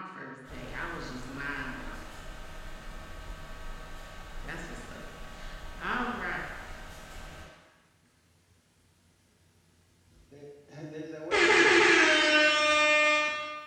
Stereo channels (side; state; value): both; identical; correlation 1.00